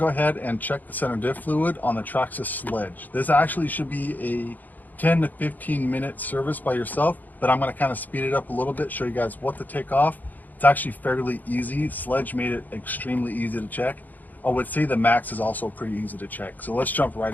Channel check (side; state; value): right; late; 0.083 ms